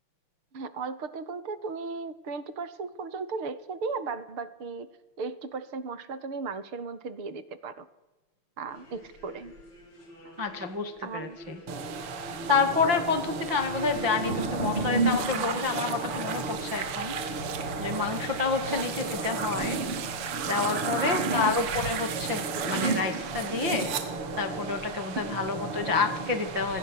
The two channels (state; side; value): late; left; 6.8 ms